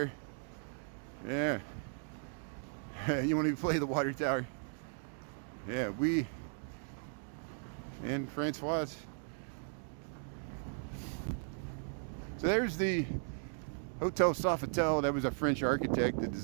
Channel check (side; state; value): left; silent; 53 dB below the other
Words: Yeah. You want to play the water tower? Yeah, and Francois. So there's the Hotel Sofitel. That was a French architect that